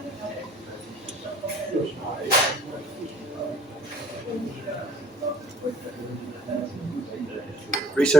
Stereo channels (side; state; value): both; normal; correlation 0.54